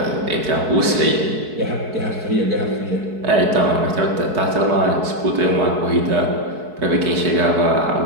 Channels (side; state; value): left; late; 4.6 ms